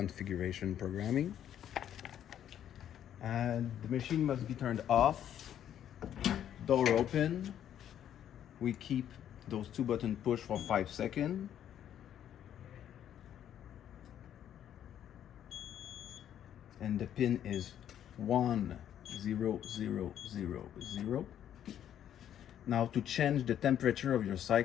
programming. And the machine must be turned off, door open. We keep those two buttons pushed for 5 seconds. And the pin is 1 0 0 0 0. Now to change the temperature of your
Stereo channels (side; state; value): right; quieter; 10.3 dB